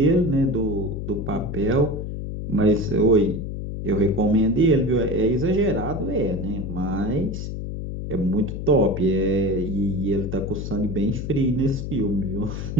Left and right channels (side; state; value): left; noise; hum, 5 dB below the sound